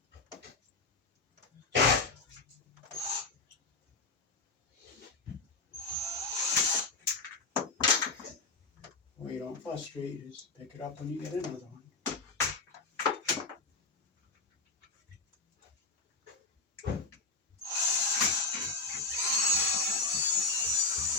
Well, you don't frustrate, you just pick it up when you get another one.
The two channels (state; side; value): quieter; right; 3.7 dB